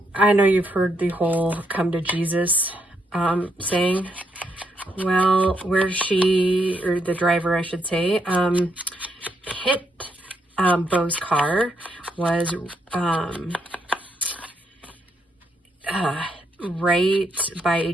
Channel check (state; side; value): normal; both; correlation 0.77